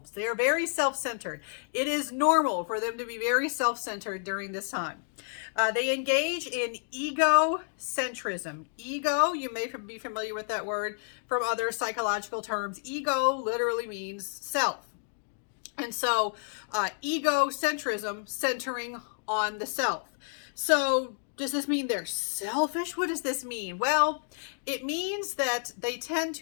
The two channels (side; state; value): right; silent; digital silence